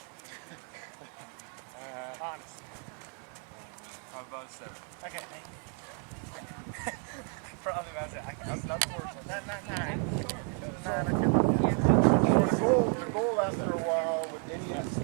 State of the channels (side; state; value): left; quieter; 38.3 dB